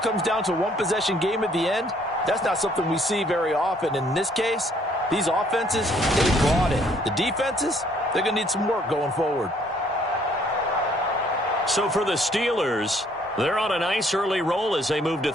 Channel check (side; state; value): both; normal; correlation 0.63